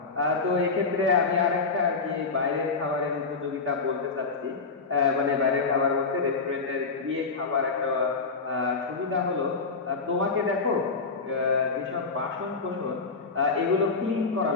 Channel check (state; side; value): quieter; right; 4.4 dB